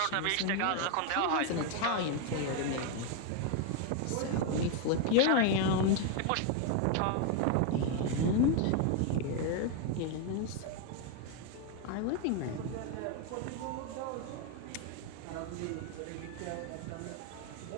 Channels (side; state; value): both; different; correlation 0.01